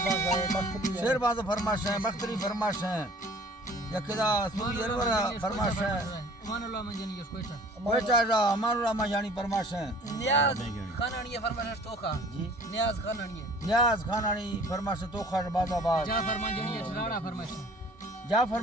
शेरबाज फरमाश है बख्तरी फरमाश है यकदा सूरी अरवरा फरमाश है अमानुल्लाह माजानी कोयटा कोयटा अमानुल्लाह माजानी फरमाश है नियाज खानानी फरमाश तोखा जी नियाज खानानी फरमाश तोखा बाजाबाद जाफर माजानी राड़ा फरमाश जाफर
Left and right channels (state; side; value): normal; both; correlation 0.50